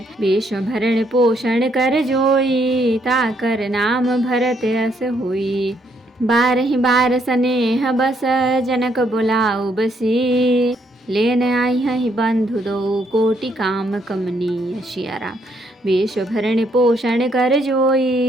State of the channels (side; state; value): both; normal; correlation 0.72